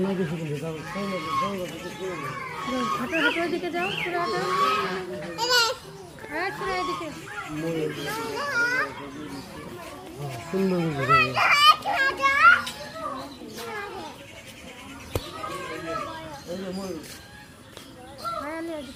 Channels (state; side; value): identical; both; correlation 1.00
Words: হাঁটো হাঁটো দিকে যাও পুরো হাঁটো হ্যাঁ পুরো এদিকে সুন্দর